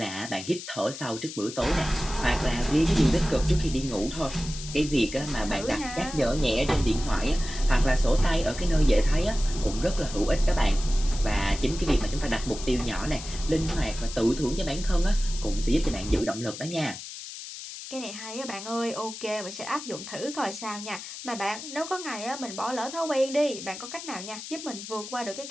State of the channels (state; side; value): noise; left; hiss, 11 dB below the sound